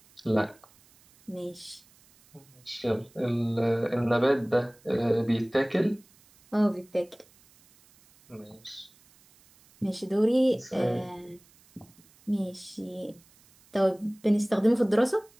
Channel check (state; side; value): noise; right; hiss, 29 dB below the sound